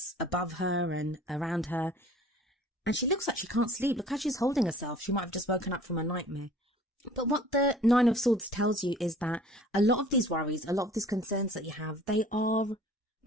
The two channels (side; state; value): both; normal; correlation 0.49